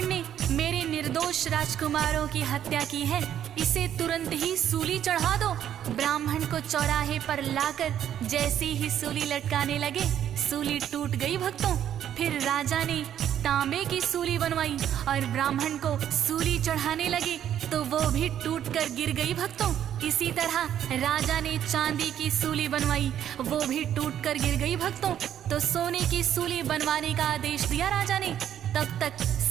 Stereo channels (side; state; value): left; quieter; 10.3 dB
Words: ने मेरे निर्दोष राजकुमारों की हत्या की है, इसे तुरंत ही सूली चढ़ा दो। ब्राह्मण को चौराहे पर लाकर जैसे ही सूली लटकाने लगे, सूली टूट गई। भक्तों, फिर राजा ने तांबे की सूली बनवाई और ब्राह्मण को सूली चढ़ाने लगे तो वो भी टूटकर गिर गई। भक्तों, इसी तरह राजा ने चांदी की सूली बनवाई, वो भी टूटकर गिर गई। भक्तों, तो सोने की सूली बनवाने का आदेश दिया राजा ने। तब तक